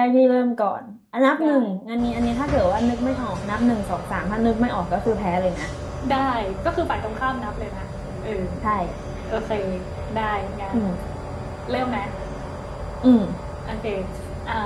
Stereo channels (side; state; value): both; identical; correlation 1.00